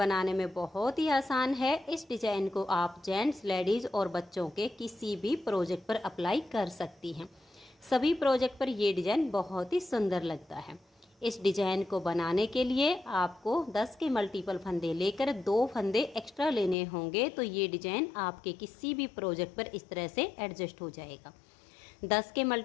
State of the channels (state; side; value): drops out; right; at 16.8 s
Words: में बहुत ही आसान है। इस डिजाइन को आप जेंट्स, लेडीज़ और बच्चों के किसी भी प्रोजेक्ट पर अप्लाई कर सकती हैं। सभी प्रोजेक्ट पर ये डिजाइन बहुत ही सुंदर लगता है। इस डिजाइन को बनाने के लिए आपको 10 के मल्टीपल फंदे लेकर 2 फंदे एक्स्ट्रा लेने होंगे, तो ये डिजाइन आपके किसी भी प्रोजेक्ट पर इस तरह से एडजस्ट हो जाएगा। 10 के